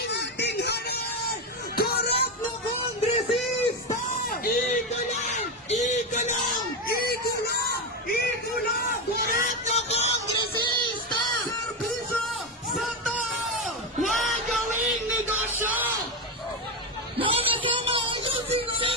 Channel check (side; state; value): both; normal; correlation 0.13